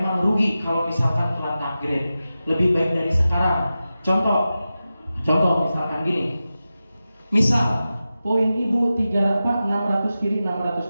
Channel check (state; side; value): inverted; both; correlation -0.93